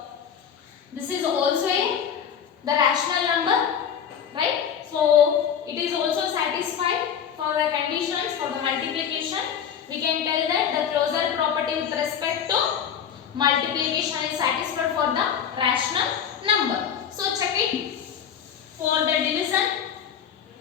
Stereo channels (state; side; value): quieter; right; 8.2 dB